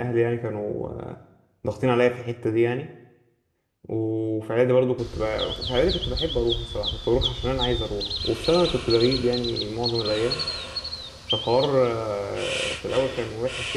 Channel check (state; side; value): identical; both; correlation 1.00